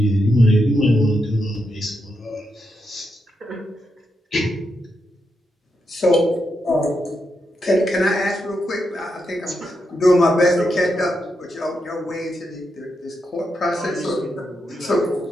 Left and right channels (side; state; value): both; normal; correlation 0.83